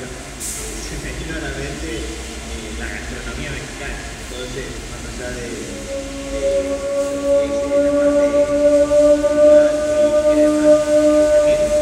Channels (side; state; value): both; identical; correlation 1.00